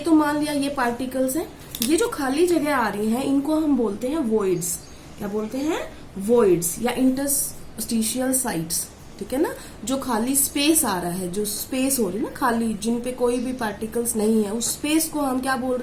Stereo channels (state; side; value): identical; both; correlation 1.00